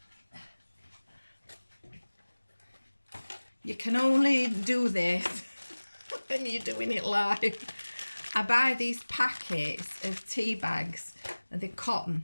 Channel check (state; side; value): inverted; both; correlation -1.00